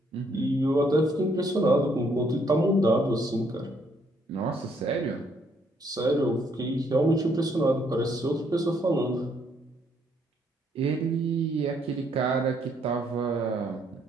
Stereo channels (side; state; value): both; normal; correlation 0.70